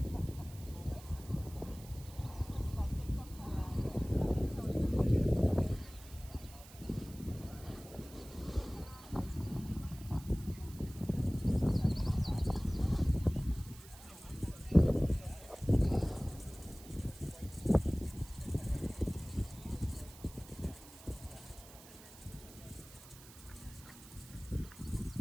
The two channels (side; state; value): right; noise; hiss, 19 dB below the sound